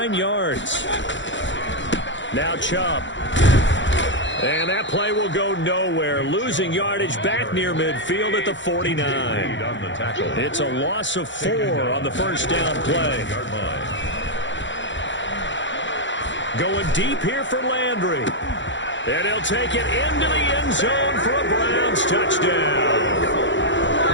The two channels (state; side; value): late; right; 0.54 ms